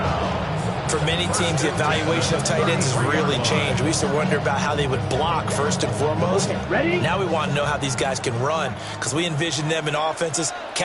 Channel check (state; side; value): identical; both; correlation 1.00